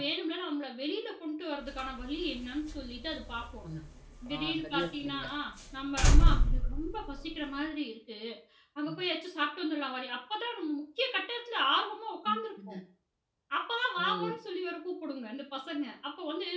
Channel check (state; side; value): identical; both; correlation 1.00